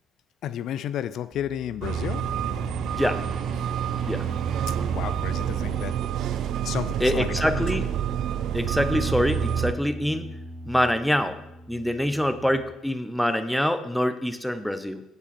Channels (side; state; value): both; normal; correlation 0.80